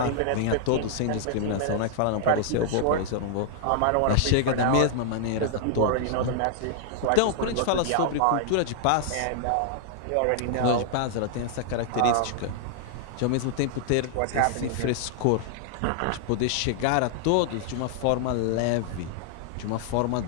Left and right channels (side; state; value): both; different; correlation -0.01